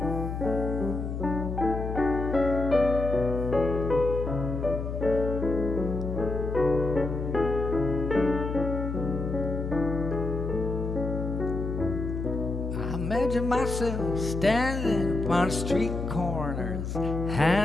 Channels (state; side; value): noise; left; hum, 4 dB below the sound